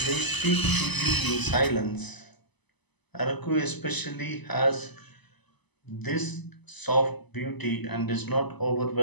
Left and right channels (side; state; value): right; late; 0.99 ms